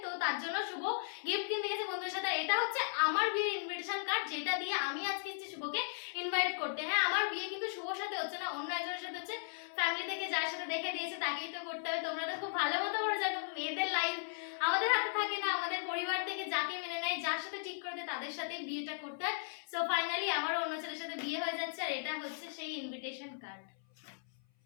তো তার জন্য শুভ গিফট কিনতে গেছে বন্ধুদের সাথে। এটা হচ্ছে আমার বিয়ের ইনভিটেশন কার্ড, যেটা দিয়ে আমি আজকে এসেছি শুভকে ইনভাইট করতে। হ্যাঁ, আমার বিয়ে কিন্তু শুভর সাথে হচ্ছে না, অন্য একজনের সাথে হচ্ছে। ফ্যামিলি থেকে যার সাথে দেখে দিয়েছে তাকেই তো করতে হবে। তোমরা তো খুব ভালো মতো করে জানো মেয়েদের লাইফ আমাদের হাতে থাকে না, আমাদের পরিবার থেকে যাকে মেনে নেয়, যার সাথে ঠিক করে দেয় তাদের সাথে বিয়েটা করতে হয়। সো ফাইনালি আমারও অন্য ছেলের সাথে বিয়ে হয়ে যাচ্ছে, আর এটা হচ্ছে সেই ইনভিটেশন কার্ড।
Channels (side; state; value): right; silent; 53 dB below the other